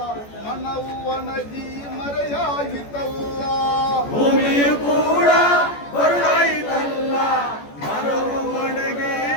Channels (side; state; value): right; late; 14 ms